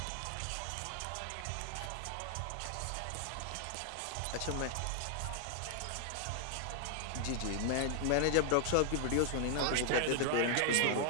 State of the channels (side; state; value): both; different; correlation 0.00